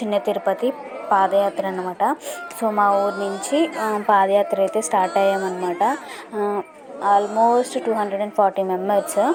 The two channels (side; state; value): both; identical; correlation 1.00